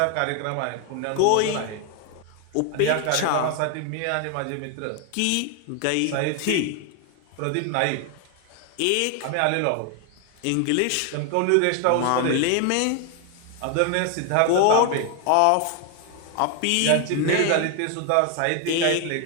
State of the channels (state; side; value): different; both; correlation 0.00